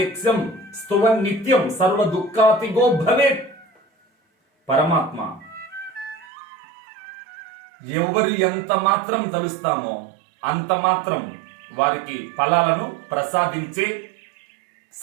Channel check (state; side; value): drops out; left; at 6.2 s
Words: స్తువన్ నిత్యం సర్వ దుఃఖాతిగో భవేత్. పరమాత్మ ఎవరు ఎంత మాత్రం తలుస్తామో అంత మాత్రం వారికి ఫలాలను ప్రసాదించే